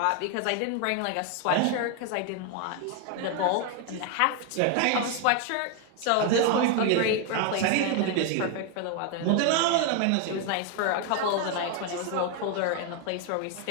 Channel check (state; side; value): different; both; correlation 0.01